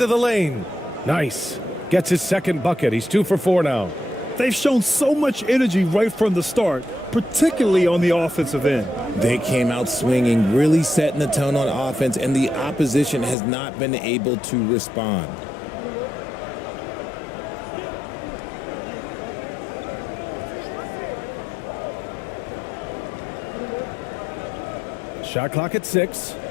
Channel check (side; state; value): right; drops out; at 13.4 s